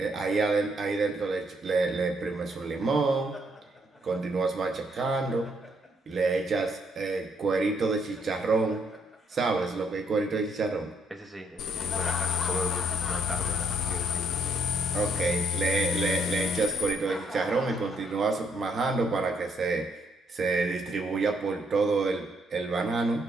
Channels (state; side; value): normal; both; correlation 0.71